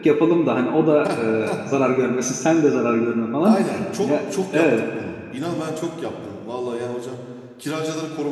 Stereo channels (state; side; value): identical; both; correlation 1.00